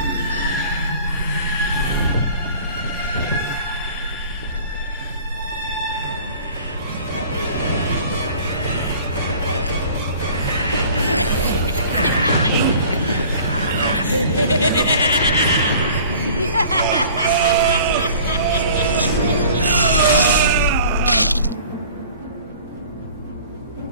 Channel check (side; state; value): both; inverted; correlation -0.47